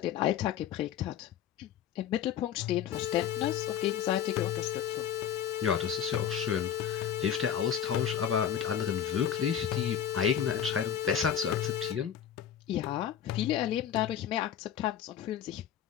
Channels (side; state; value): right; quieter; 9.3 dB